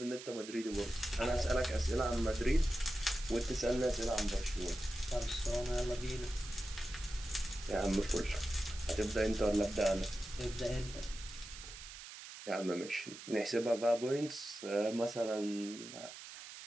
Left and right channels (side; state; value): right; noise; hiss, 13 dB below the sound